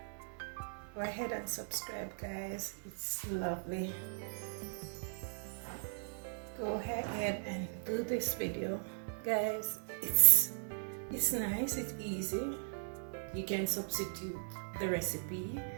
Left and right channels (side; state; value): left; silent; 52 dB below the other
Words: Go ahead and subscribe, guys. It's lovely. Go ahead and do this video, guys. It's nice. It's easy. You can substitute the recipe.